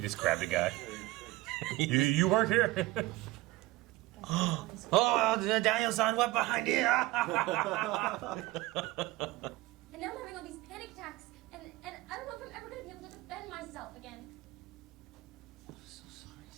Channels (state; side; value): quieter; left; 18.7 dB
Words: just grabbed a guy. you work here? Oh, Daniel-san, what behind you? And now I'm having all these panic attacks, and I don't know if I'm ever going to be able to defend myself again. I'm so sorry,